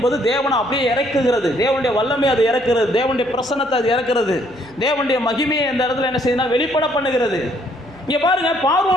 தேவனை அப்படியே இறக்குகிறது, தேவனுடைய வல்லமை அது இறக்குறது, தேவனுடைய பிரசன்னத்தை அது இறக்குறது, தேவனுடைய மகிமையை அந்த இடத்துல என்ன செய்யுதுன்னா வெளிப்பட பண்ணுகிறது. இங்கே பாருங்க,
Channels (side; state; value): left; noise; hum, 28 dB below the sound